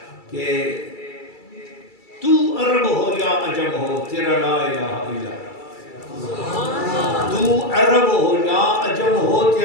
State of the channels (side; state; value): right; late; 2.3 ms